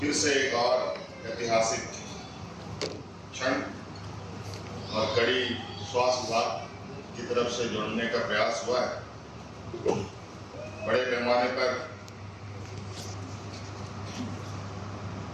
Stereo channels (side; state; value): both; identical; correlation 1.00